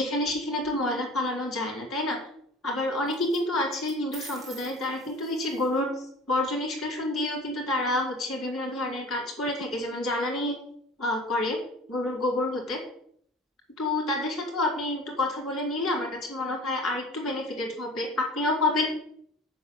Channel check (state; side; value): normal; both; correlation 0.41